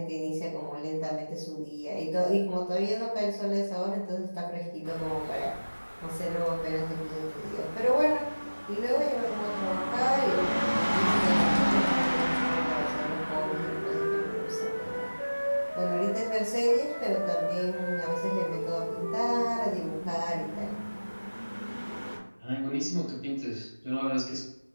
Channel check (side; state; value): both; inverted; correlation -1.00